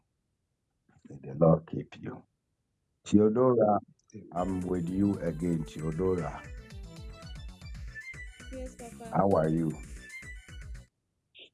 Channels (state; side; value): identical; both; correlation 1.00